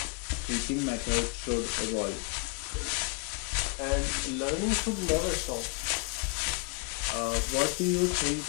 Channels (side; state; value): right; quieter; 33.3 dB